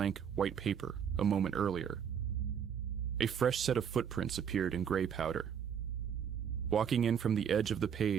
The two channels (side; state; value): left; quieter; 7.9 dB